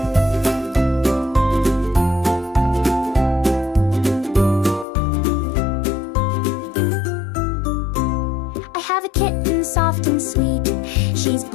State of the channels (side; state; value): right; drops out; at 4.9 s